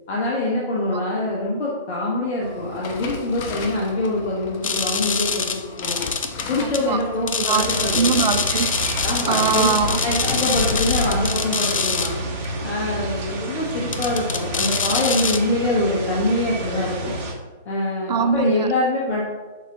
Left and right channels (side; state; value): both; inverted; correlation -0.30